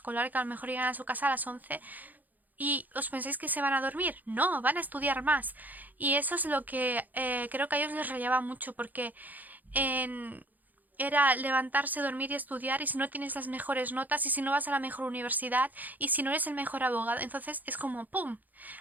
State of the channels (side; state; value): left; late; 0.083 ms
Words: que a lo mejor llegan a su casa a las 11. ¿Y os pensáis que se van a dormir? No, van a estudiar más. Y eso es lo que creo que a ellos les rayaba mucho porque en, era levantarse, dormir y estudiar, y si no tienes las mejores notas, y si no vas a la mejor universidad, y si no eres el mejor abogado, entonces es como ¡pum!